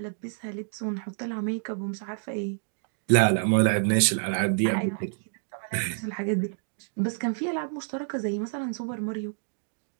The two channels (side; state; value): left; silent; digital silence